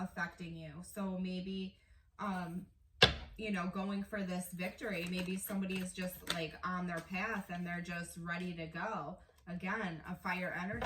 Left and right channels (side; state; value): both; identical; correlation 1.00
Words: you. So maybe, you know, going for this victory. Maybe somebody is just like on their path and they're just ready to go. Again, a fire